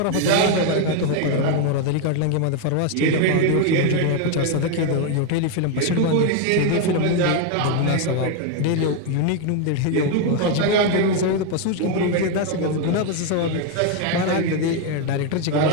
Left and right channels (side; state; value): both; different; correlation 0.01